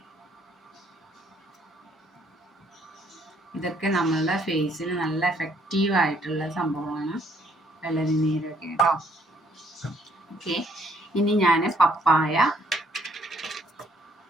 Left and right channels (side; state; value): both; normal; correlation 0.66